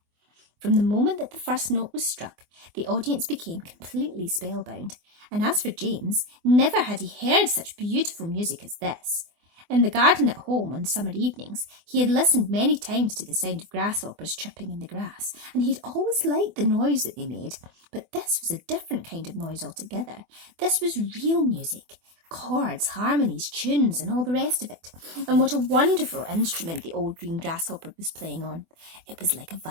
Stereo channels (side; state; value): left; late; 24 ms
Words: From the moment that the first note was struck, the audience became completely spellbound, and as for James, never had he heard such beautiful music as this. In the garden at home on summer evenings, he had listened many times to the sound of grasshoppers chirping in the grass, and he had always liked the noise that they made. But this was a different kind of noise altogether. This was real music. Chords, harmonies, tunes, and all the rest of it. And what a wonderful instrument the old green grasshopper was playing on. It was like a